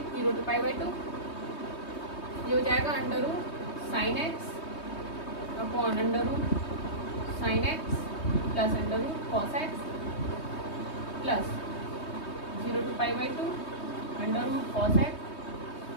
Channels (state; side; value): late; right; 3.2 ms